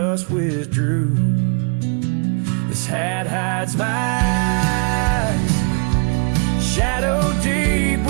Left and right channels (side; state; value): left; quieter; 38.4 dB